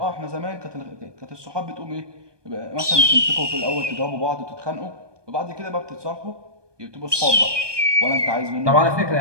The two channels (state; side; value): late; left; 1.2 ms